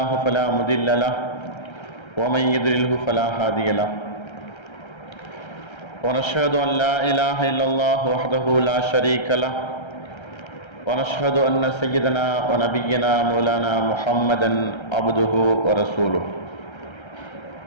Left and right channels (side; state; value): right; late; 1.3 ms